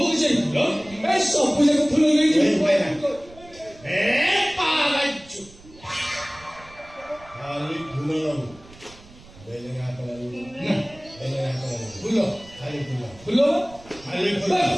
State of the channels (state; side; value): noise; right; rumble, 22 dB below the sound